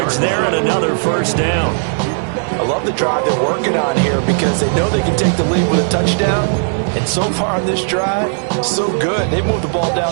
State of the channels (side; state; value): left; silent; 69 dB below the other